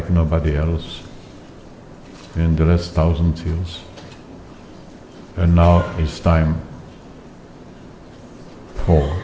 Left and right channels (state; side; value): identical; both; correlation 1.00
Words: nobody else in the last 1,000 years. And now it's time for